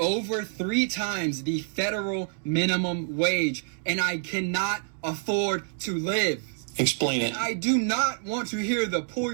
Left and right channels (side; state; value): left; silent; digital silence